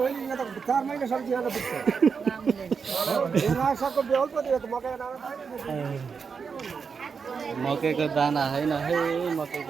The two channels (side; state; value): left; quieter; 5.8 dB